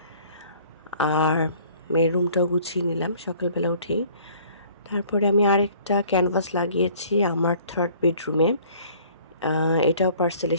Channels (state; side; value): inverted; both; correlation -0.54